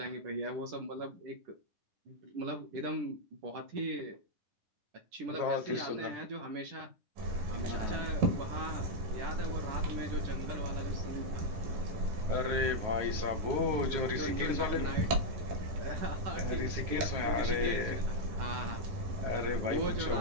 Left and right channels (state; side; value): late; left; 10 ms